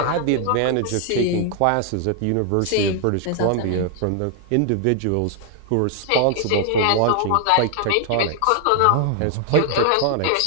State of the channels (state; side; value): different; both; correlation 0.00